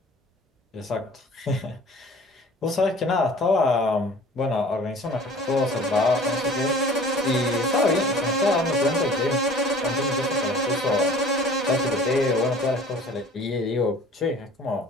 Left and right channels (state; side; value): normal; both; correlation 0.47